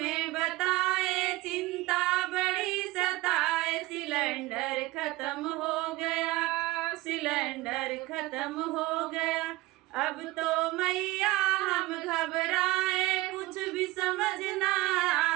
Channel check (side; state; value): left; quieter; 19.5 dB